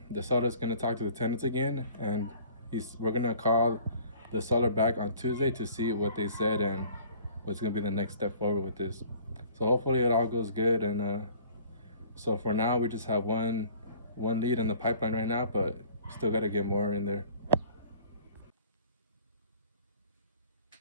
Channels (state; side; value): inverted; both; correlation -0.52